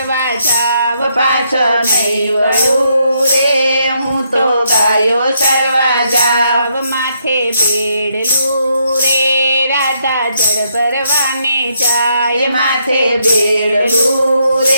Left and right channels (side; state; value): both; inverted; correlation -0.75